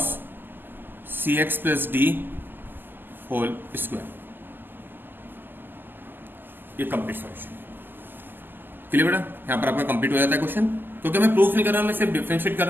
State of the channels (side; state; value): left; late; 0.092 ms